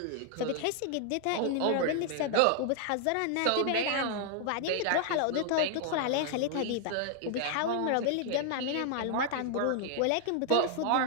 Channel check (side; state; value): both; different; correlation 0.00